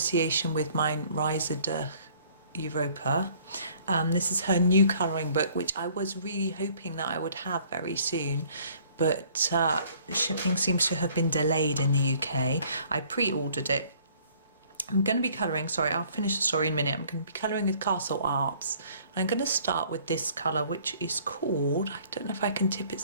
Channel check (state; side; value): inverted; both; correlation -0.57